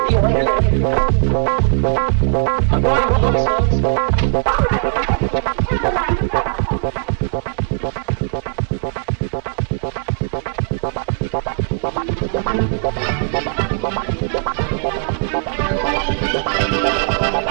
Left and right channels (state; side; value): silent; left; 62 dB below the other